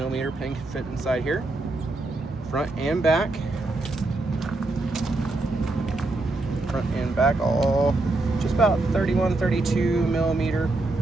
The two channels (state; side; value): quieter; left; 3.0 dB